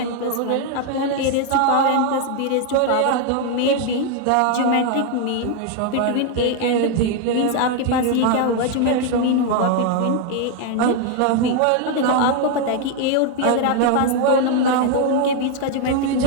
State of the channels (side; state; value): both; different; correlation 0.00